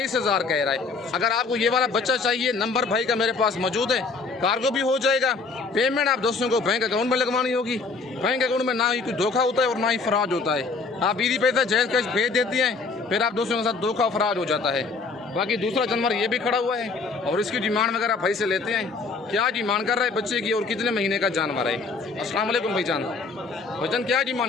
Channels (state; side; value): quieter; right; 4.3 dB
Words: कह रहा है। अगर आपको ये वाला बच्चा चाहिए, नंबर भाई का मेरे पास मौजूद है, कार्गो भी हो जाएगा। पेमेंट आप दोस्तों को बैंक अकाउंट में लगवानी होगी। बैंक अकाउंट में ना ही कोई धोखा होता है और ना ही फराज होता है। आप बीदी पैसा जैज कैश भेज देती हैं, फिर आप दोस्तों के साथ धोखा फराज हो जाता है। बाकी दूसरा जानवर ये भी खड़ा हुआ है, और इसकी डिमांड वगैरह भाई से लेते हैं। क्या डिमांड कर रहा है बच्चे की, और कितने महीने का जानवर है? अस्सलाम वालेकुम भाईजान। भाईजान क्या